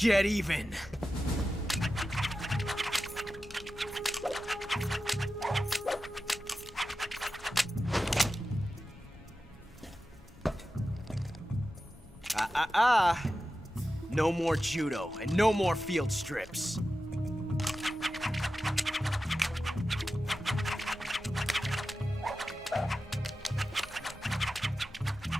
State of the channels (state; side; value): normal; both; correlation 0.92